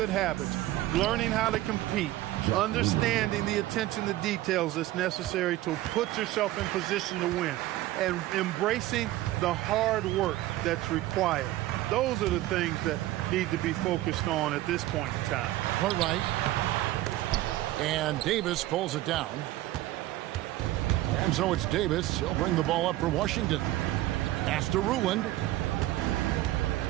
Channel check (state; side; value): quieter; left; 15.9 dB